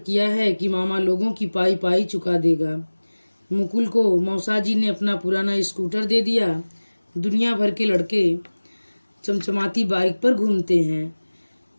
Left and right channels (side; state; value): both; inverted; correlation -1.00